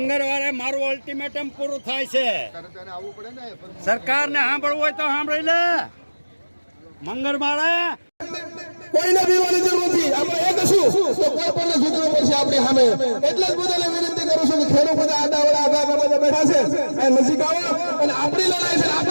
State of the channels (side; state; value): both; inverted; correlation -1.00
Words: મંગળવારે મારું અલ્ટિમેટમ પૂરું થાય છે. સરકારને સાંભળવું હોય તો સાંભળી લે. મંગળવારે કોઈને બીવાની જરૂર નથી. આપણે એક હશું તો કોઈ પણ ઝૂકવું પડશે આપણી સામે. એટલે જ બધાને વિનંતી કરું છું કે ખેડૂત બધા આડાવડા આગા બેઠા છે એ નજીક આવો અને આપણી લડાઈ છે